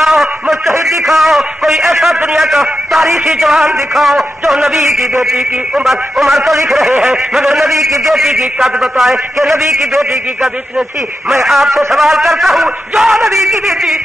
مجتہد دکھاؤ کوئی ایسا دنیا کا تاریخی جوان دکھاؤ جو نبی کی بیٹی کی عمر تو لکھ رہے ہیں مگر نبی نبی کی بیٹی کی قد بتائے کہ نبی کی بیٹی کی قد اتنی تھی. میں آپ سے سوال کرتا ہوں, جو نبی کی بیٹی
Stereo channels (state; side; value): normal; both; correlation 0.88